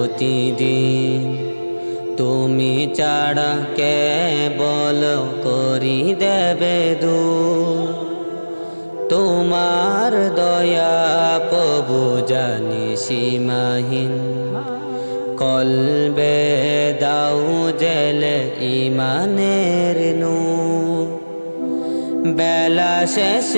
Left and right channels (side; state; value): both; inverted; correlation -1.00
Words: তুমি ছাড়া কে বল করি দেবে দূর। তোমার দয়া প্রভু জানি সীমাহীন, কলবে দাও জেলে ইমানের নূর। বেলা